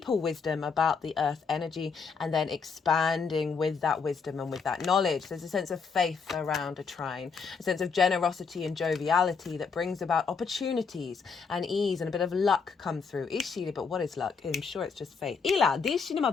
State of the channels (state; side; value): quieter; right; 5.4 dB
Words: wisdom about the earth energy and then expanding with that wisdom and with that knowledge. There's a sense of faith around a trine, a sense of generosity and joviality that brings about opportunities and ease and a bit of luck come through. But what is luck? I'm sure it's just faith.